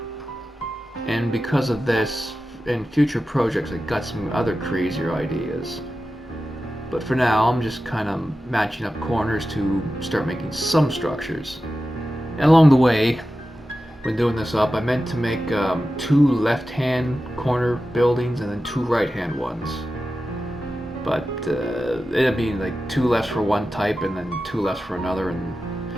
And because of this, in future projects, I got some other crazier ideas. But for now, I'm just kind of matching up corners to start making some structures. And along the way, when doing this up, I meant to make 2 left-hand corner buildings and then 2 right-hand ones. But it ended up being like 2 lefts for one type and then 2 lefts for another, and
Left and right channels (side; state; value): both; normal; correlation 0.93